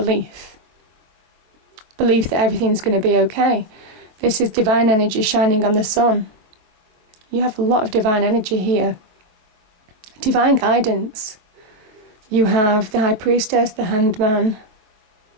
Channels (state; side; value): late; left; 23 ms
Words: Belief that everything's going to be okay. This is divine energy shining on the sun. You have a lot of divine energy here. Divine guidance. You have the High Priestess, the Hanged Man.